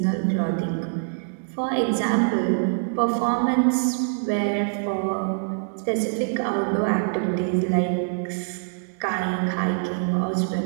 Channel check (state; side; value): silent; left; digital silence